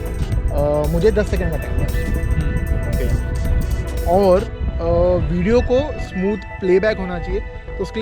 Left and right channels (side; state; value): both; identical; correlation 1.00